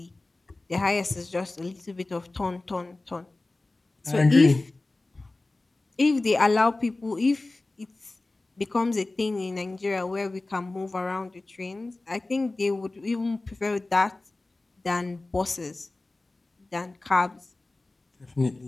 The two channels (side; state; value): right; quieter; 3.0 dB